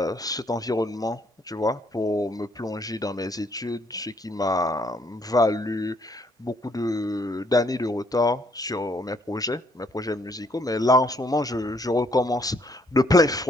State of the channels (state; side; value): normal; both; correlation 0.68